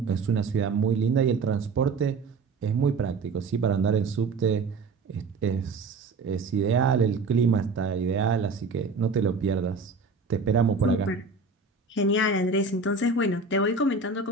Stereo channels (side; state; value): left; quieter; 4.1 dB